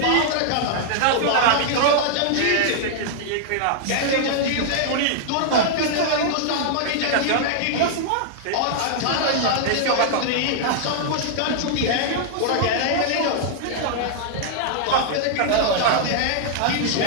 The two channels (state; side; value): different; both; correlation -0.01